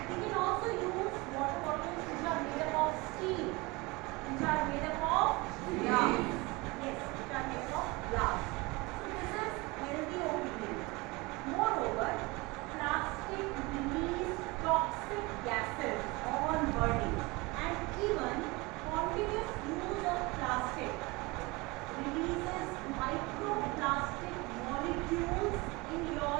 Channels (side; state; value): left; quieter; 24.4 dB